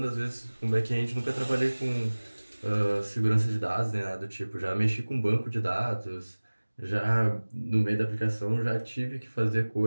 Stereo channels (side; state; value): both; inverted; correlation -1.00